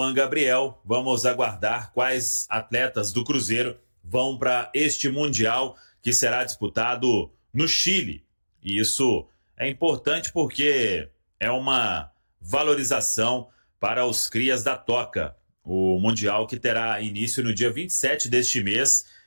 Gabriel. Vamos aguardar quais atletas do Cruzeiro vão para este Mundial que será disputado no Chile. E isso é importante porque é uma valorização para os crias da Toca. O Mundial que terá início no dia 27 deste mês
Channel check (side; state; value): both; inverted; correlation -1.00